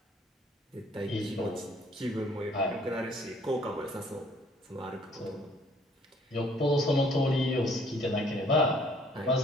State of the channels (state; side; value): normal; both; correlation 0.60